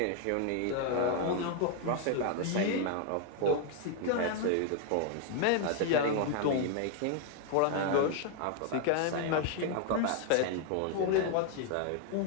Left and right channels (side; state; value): both; different; correlation 0.00